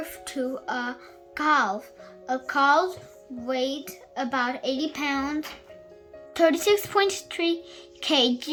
to a calf. A calf weighs about 80 pounds, 36.3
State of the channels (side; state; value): both; identical; correlation 1.00